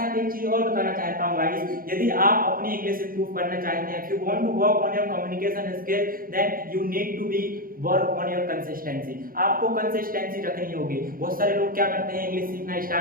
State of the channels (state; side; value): late; left; 0.42 ms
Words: एक चीज और बताना चाहता हूं गाइस, यदि आप अपनी इंग्लिश इंप्रूव करना चाहते हैं, if you want to work on your communication skill then you need to be work on your consistency. आपको कंसिस्टेंसी रखनी होगी। बहुत सारे लोग क्या करते हैं, इंग्लिश सीखना